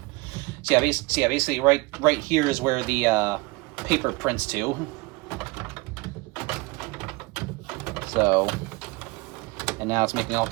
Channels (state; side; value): quieter; left; 24.3 dB